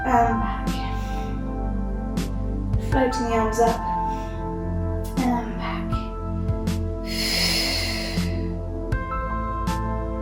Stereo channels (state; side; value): identical; both; correlation 1.00